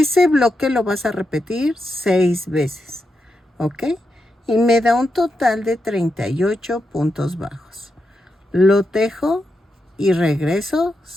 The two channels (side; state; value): both; normal; correlation 0.85